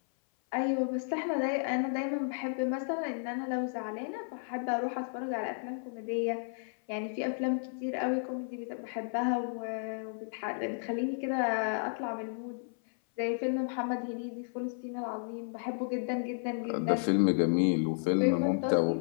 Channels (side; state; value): right; silent; 56 dB below the other